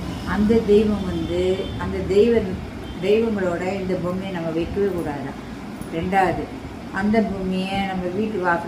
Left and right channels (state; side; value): identical; both; correlation 1.00